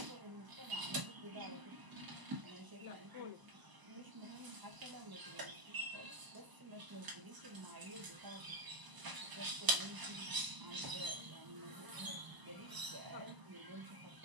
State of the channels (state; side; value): late; left; 1.0 ms